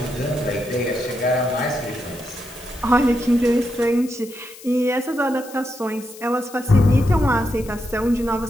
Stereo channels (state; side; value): noise; left; hiss, 18 dB below the sound